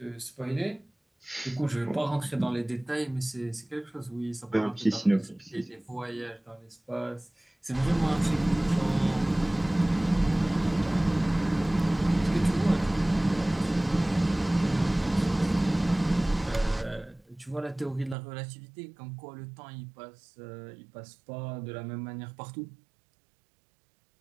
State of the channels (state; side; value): drops out; left; at 18.2 s